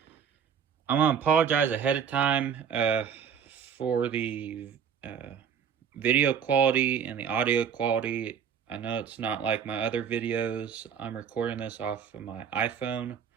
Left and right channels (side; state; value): left; quieter; 7.6 dB